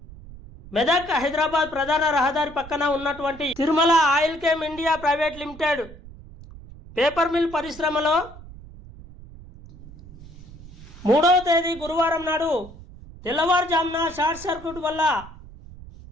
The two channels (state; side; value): noise; right; rumble, 17 dB below the sound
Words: మెదక్ హైదరాబాద్ ప్రధాన రహదారి పక్కన ఉన్నటువంటి Tirumala oil chem India private limited paper mill పరిశ్రమలో 3వ తేదీ గురువారం నాడు తెల్లవారుజామున షార్ట్ సర్క్యూట్ వల్ల